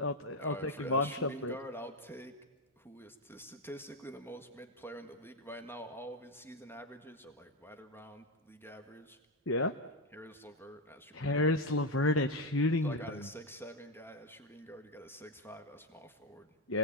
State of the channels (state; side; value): normal; both; correlation 0.08